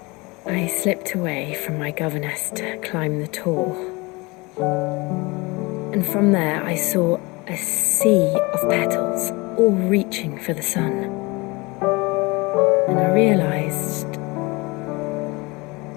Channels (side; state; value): right; quieter; 24.9 dB